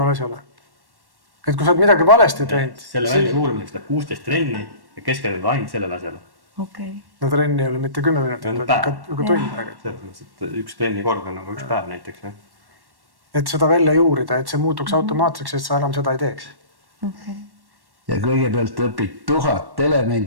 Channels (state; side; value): late; left; 1.1 ms